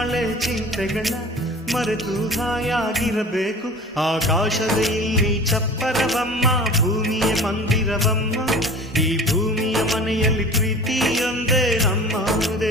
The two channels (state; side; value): normal; both; correlation 0.40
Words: ಚಿಂತೆಗಳ ಮರೆತು ಹಾಯಾಗಿರಬೇಕು. ಆಕಾಶದ ಇಲ್ಲಿ ಚಪ್ಪರವಮ್ಮ, ಭೂಮಿಯ ಮಂದಿರವಮ್ಮ, ಈ ಭೂಮಿಯ ಮನೆಯಲ್ಲಿ ಪ್ರೀತಿಯೊಂದೇ ನಮ್ಮ